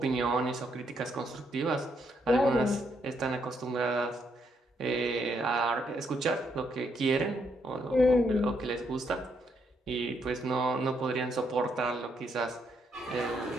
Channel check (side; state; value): both; normal; correlation 0.75